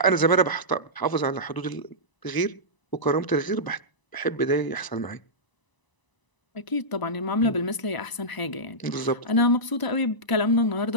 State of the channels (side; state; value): right; late; 1.0 ms